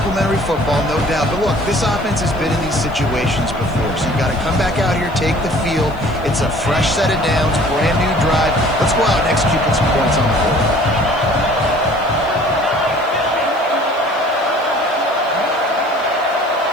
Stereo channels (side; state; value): left; noise; hiss, 28 dB below the sound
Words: football, no doubt. But look, this offense has been in these situations before, so you got to come back out here, take the field. It's a fresh set of downs, brand new drive. Let's go out and execute with some points on the board.